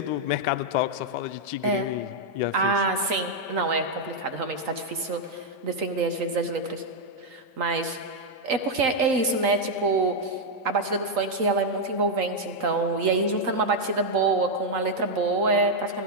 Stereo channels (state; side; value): late; left; 3.9 ms